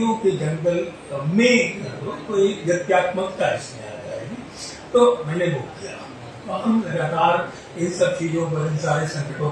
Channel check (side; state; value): both; identical; correlation 1.00